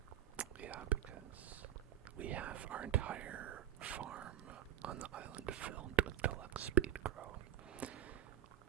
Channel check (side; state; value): left; quieter; 10.8 dB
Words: Yeah, because we have our entire farm on the island filled with deluxe speed grow.